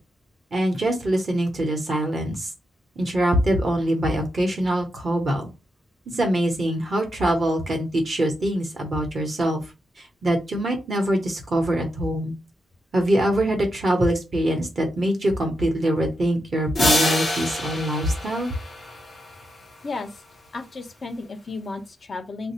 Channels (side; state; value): both; normal; correlation 0.85